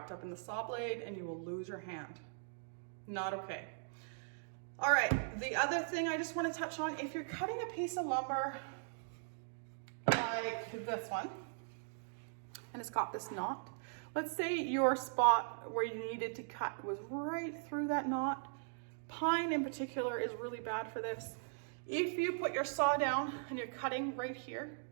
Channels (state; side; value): silent; left; digital silence